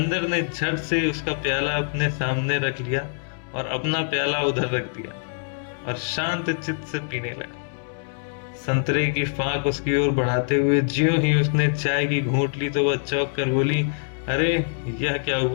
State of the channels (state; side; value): silent; right; 62 dB below the other